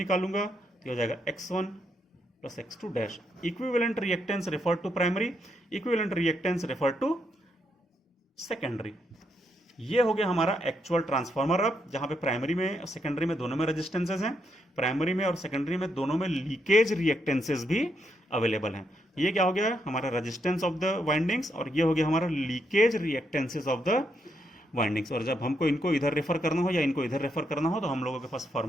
तो ये हो जाएगा x1 plus x2 dash. Equivalent reactance refer to primary, equivalent reactance refer to secondary. ये हो गया हमारा एक्चुअल ट्रांसफार्मर। अब जहां पे प्राइमरी में और सेकेंडरी में दोनों में रेजिस्टेंसेज हैं, प्राइमरी में और सेकेंडरी में दोनों में लीकेज रिएक्टेंसेज भी अवेलेबल हैं। ये क्या हो गया, हमारा रेजिस्टेंस ऑफ द वाइंडिंग्स, और ये हो गया हमारा लीकेज रिएक्टेंसेज ऑफ द वाइंडिंग्स। और जब हमको इनको इधर रेफर करना हो या इनको इधर रेफर करना हो तो हम लोगों के पास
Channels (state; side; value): normal; both; correlation 0.78